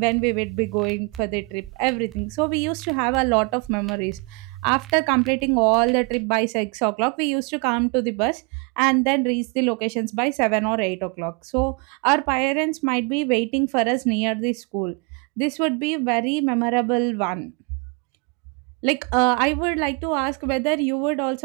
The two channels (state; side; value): quieter; left; 30.7 dB